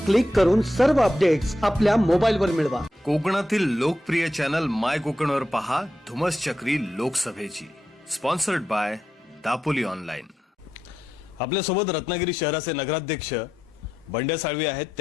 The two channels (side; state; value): both; normal; correlation 0.86